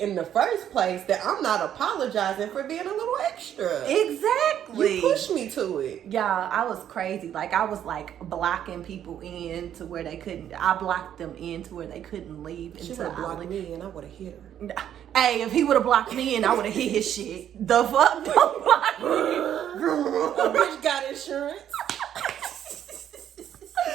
in the first place, that I'm not apologizing for being a little extra. Exactly. You pushed me to it. Yeah, I was crazy. Like, I was like blocking people in to where they couldn't. I blocked them in to where they couldn't leave. She would have blocked me and I would have hit her. Hey, if he would have blocked me in, I would have hit his shit. The fuck? Don't block me. A bitch got insurance.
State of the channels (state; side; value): quieter; left; 10.2 dB